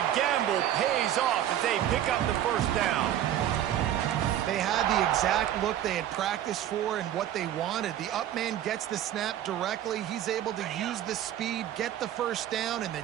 gamble pays off as they pick up the first down. They had the exact look they had practiced for and what they wanted. The up man gets the snap directly. He's able to use the speed, get the first down, and the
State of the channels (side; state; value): left; quieter; 11.6 dB